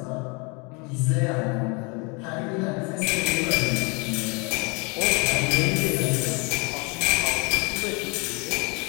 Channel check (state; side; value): quieter; right; 30.6 dB